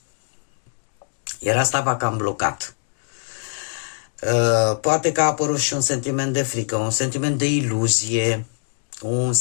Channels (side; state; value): right; silent; digital silence